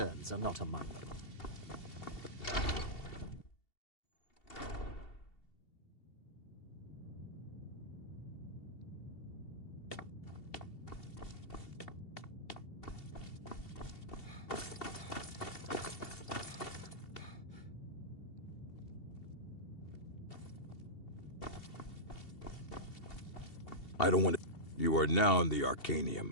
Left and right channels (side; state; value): right; late; 2.7 ms